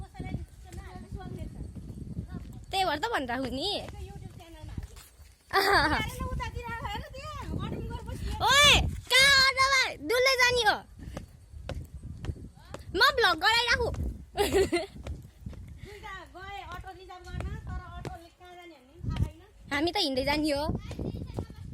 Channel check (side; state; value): both; identical; correlation 1.00